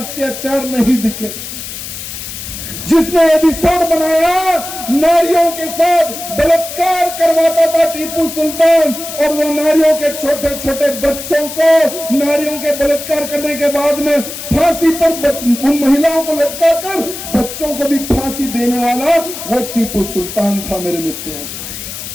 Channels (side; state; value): left; noise; hiss, 9 dB below the sound